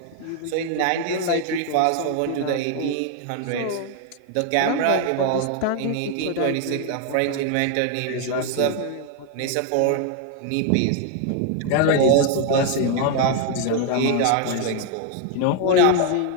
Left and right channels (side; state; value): both; different; correlation 0.00